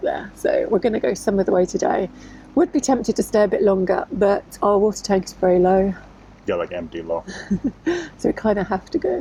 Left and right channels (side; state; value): both; identical; correlation 1.00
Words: there, so we're going to go some of the way today. Would be tempted to stay a bit longer, but our water tank is very low. Yeah, like empty low. So we kind of have to